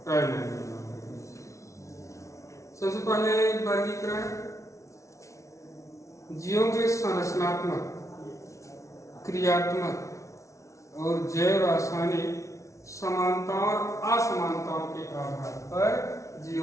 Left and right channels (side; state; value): right; late; 0.14 ms